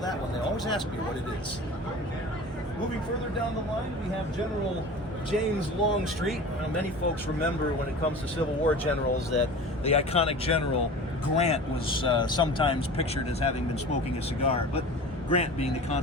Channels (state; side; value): normal; both; correlation 0.36